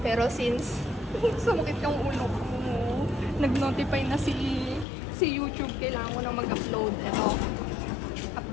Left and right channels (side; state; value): right; drops out; at 4.9 s